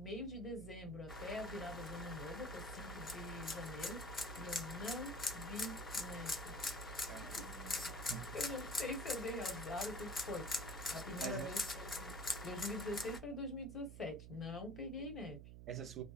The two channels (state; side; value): noise; right; hum, 10 dB below the sound